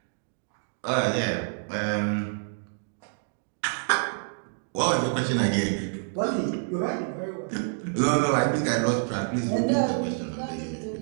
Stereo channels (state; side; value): silent; left; digital silence